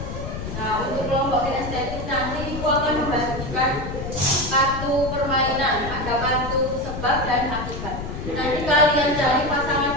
Nah, untuk kelompok kinestetik nanti ibu akan membagikan kartu permainan, ada kartu sebab dan akibat. Nanti kalian cari pasangan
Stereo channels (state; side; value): noise; left; rumble, 7 dB below the sound